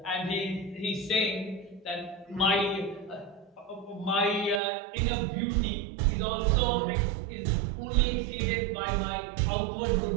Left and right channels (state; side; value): drops out; left; at 4.6 s